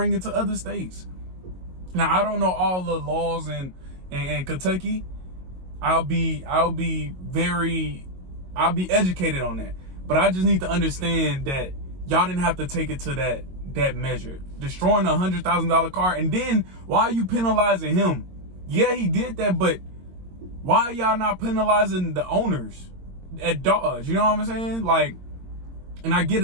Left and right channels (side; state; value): left; late; 22 ms